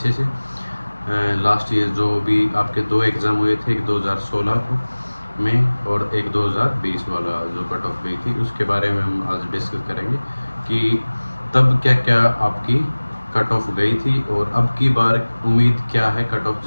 से। लास्ट ईयर जो भी आपके दो एग्ज़ाम हुए थे, एक 2016 में और एक 2020 वाला जो कट ऑफ गई थी, उसके बारे में हम आज डिस्कस करेंगे कि तब क्या क्या आपकी कट ऑफ गई थी और अब की बार उम्मीद क्या है कट ऑफ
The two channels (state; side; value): inverted; both; correlation -1.00